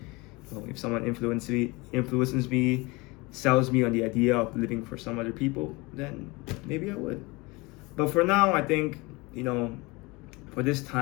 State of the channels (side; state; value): right; quieter; 24.9 dB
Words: if someone influences me, sells me on the idea of living for some other people, then maybe I would. But for now, I think, for this